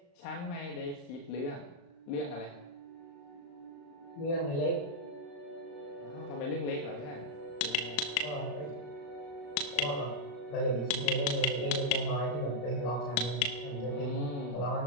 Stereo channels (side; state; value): right; late; 35 ms